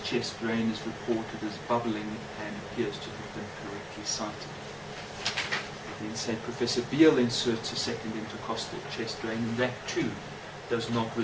chest drain is reported as bubbling and appears to have been correctly cited. Then say Professor Beale inserts a second intercostal chest drain, and that too does not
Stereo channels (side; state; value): both; identical; correlation 1.00